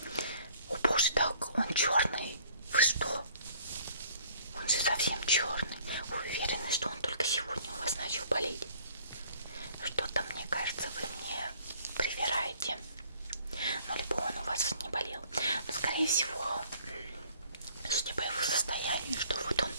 О боже, так он черный. Вы что? Он же совсем черный. Вы уверены, что он только сегодня у вас начал болеть? Что-то, мне кажется, вы мне привираете. Ну, либо он у вас не болел. Но, скорее всего, судя по его состоянию, что вот он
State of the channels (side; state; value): both; inverted; correlation -0.56